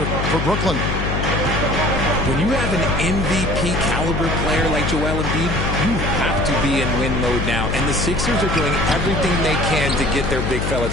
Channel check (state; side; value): noise; left; hum, 1 dB below the sound